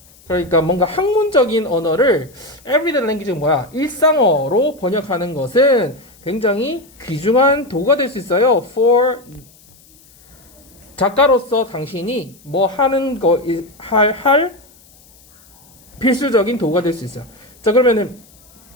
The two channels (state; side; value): noise; left; hiss, 27 dB below the sound